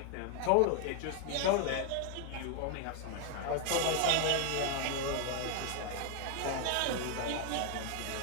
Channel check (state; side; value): different; both; correlation 0.00